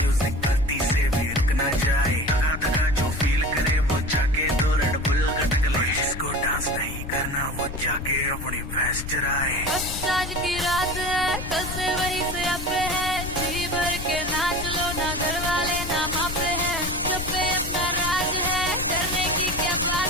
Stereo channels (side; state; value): left; noise; rumble, 8 dB below the sound